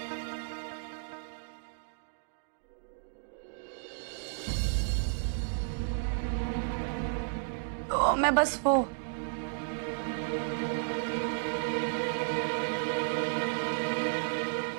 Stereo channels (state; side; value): silent; left; digital silence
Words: तो मैं बस वो